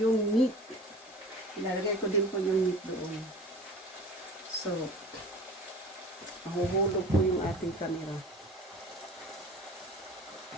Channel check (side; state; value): both; normal; correlation 0.40